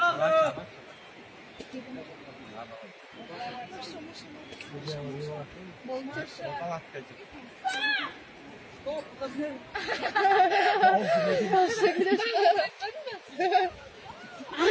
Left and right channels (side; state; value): both; identical; correlation 1.00